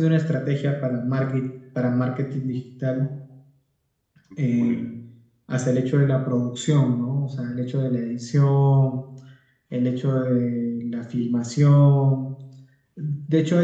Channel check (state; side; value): identical; both; correlation 1.00